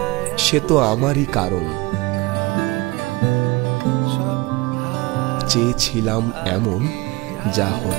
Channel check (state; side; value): quieter; left; 23.1 dB